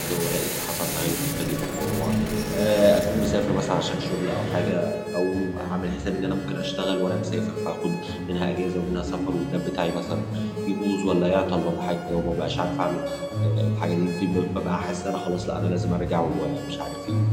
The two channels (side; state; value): both; identical; correlation 1.00